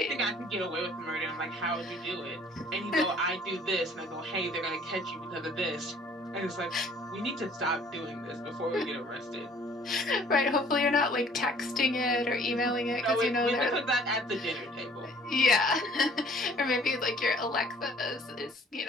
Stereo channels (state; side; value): normal; both; correlation 0.55